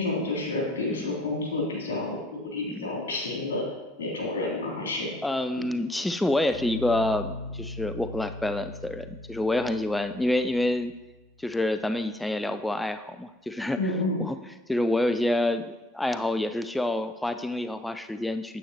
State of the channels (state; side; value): normal; both; correlation 0.63